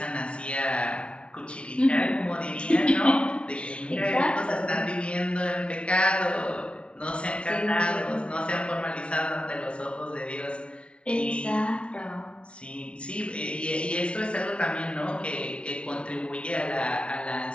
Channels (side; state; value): right; late; 0.057 ms